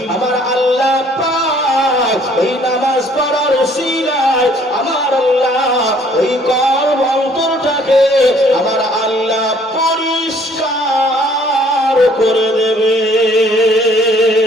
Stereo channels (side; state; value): both; normal; correlation 0.60